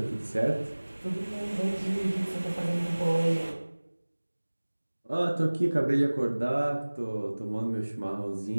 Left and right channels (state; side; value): inverted; both; correlation -1.00